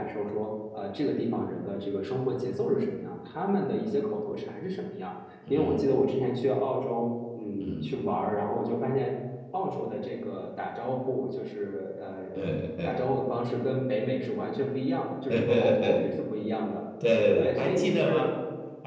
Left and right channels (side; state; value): both; identical; correlation 1.00